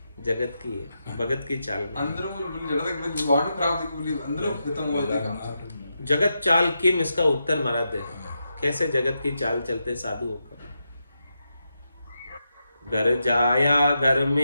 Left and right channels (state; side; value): inverted; both; correlation -0.86